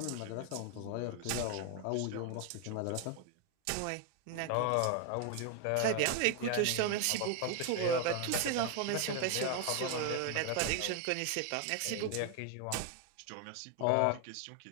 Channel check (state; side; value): different; both; correlation 0.01